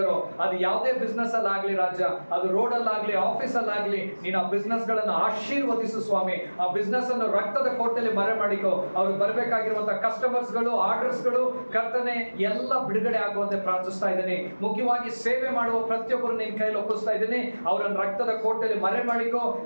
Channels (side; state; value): both; inverted; correlation -1.00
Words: ಅದು ಯಾವುದೇ ಬಿಸ್ನೆಸ್ ಅಲ್ಲಾಗ್ಲಿ ರಾಜ, ಅದು ರೋಡ್ ಅಲ್ಲಾಗ್ಲಿ ಆಫೀಸ್ ಅಲ್ಲಾಗ್ಲಿ, ನೀನು ಆ ಬಿಸ್ನೆಸ್ ಗಳನ್ನು ಆಶೀರ್ವದಿಸು ಸ್ವಾಮಿ. ಆ ಬಿಸ್ನೆಸ್ ಅನ್ನು ರಕ್ತದ ಕೋಟೆಯಲ್ಲಿ ಮರೆ ಮಾಡಿಕೋ. ಅವ್ರಿಗೆ ಬರಬೇಕಾಗಿರುವಂತಹ ಕಸ್ಟಮರ್ಸ್ ಗಳು, ಆರ್ಡರ್ಸ್ ಗಳು ಕರ್ತನೆ ಎಲ್ಲ ಬಿಡುಗಡೆ ಆಗುವಂತೆ ಪ್ರಾರ್ಥಿಸ್ತಾ ಇದ್ದೀನಿ. ಮುಖ್ಯವಾಗಿ ಸೇವೆ ಮಾಡುವ ಪ್ರತಿಯೊಬ್ಬರು ನಿನ್ನ ಕೈಯಲ್ಲಿ ಒಪ್ಪಿಸ್ತಾ ಇದ್ದೀನಿ. ಅವರನ್ನು ರಕ್ತದ ಕೋಟೆಯಲ್ಲಿ ಮರೆ ಮಾಡಿಕೋ.